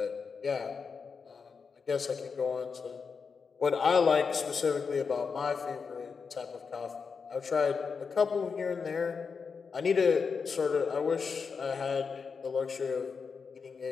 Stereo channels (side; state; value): right; quieter; 5.5 dB